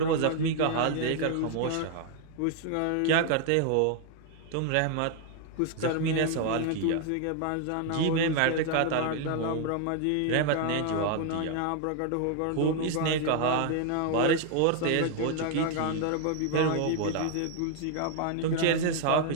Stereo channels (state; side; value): different; both; correlation 0.00